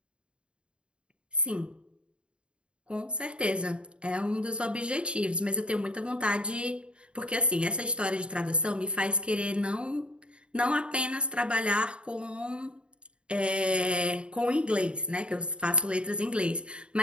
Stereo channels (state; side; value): late; left; 0.055 ms